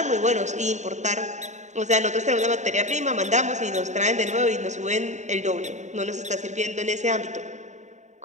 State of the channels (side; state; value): left; late; 0.34 ms